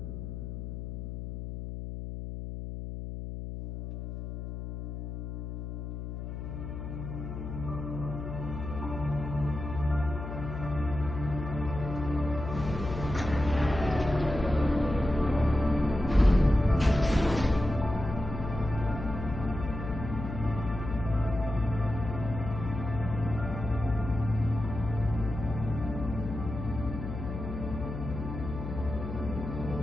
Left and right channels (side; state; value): left; noise; hum, 7 dB below the sound